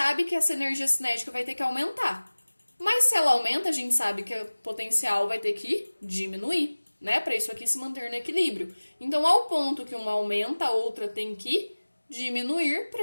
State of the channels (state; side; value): inverted; both; correlation -1.00